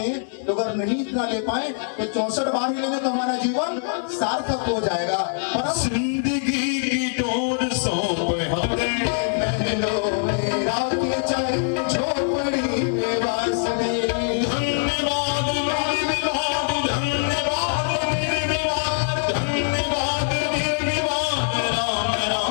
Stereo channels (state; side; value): silent; right; 63 dB below the other